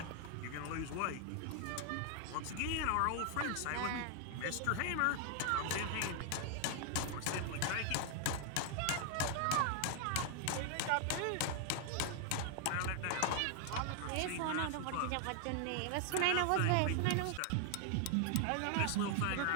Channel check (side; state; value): both; different; correlation 0.00